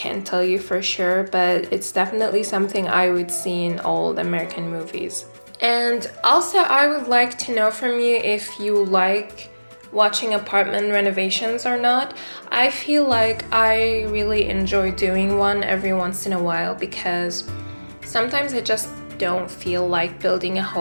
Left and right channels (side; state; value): both; inverted; correlation -1.00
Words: tell you for sure, but it's definitely something I would see in old American movies. And also, I would like to know from you if you like watching apartment renovations or not. I feel like I really enjoy doing one every once in a while because sometimes I just don't feel like building a